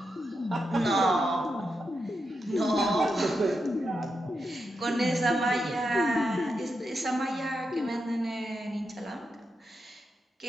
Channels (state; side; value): normal; both; correlation 0.86